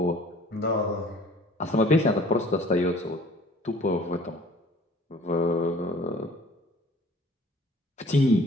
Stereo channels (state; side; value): normal; both; correlation 0.52